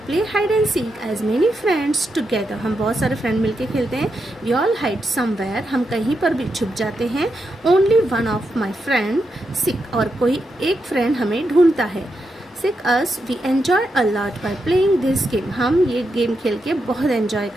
play hide and seek as many friends together. हम बहुत सारे फ्रेंड मिलके खेलते हैं। वी ऑल हाइड समवेयर, हम कहीं पर भी छुप जाते हैं। Only one of my friend seek, और कोई एक फ्रेंड हमें ढूंढता है। Seek us, we enjoy a lot by playing this game. हम ये गेम खेल के बहुत एन्जॉय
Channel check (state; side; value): normal; both; correlation 0.85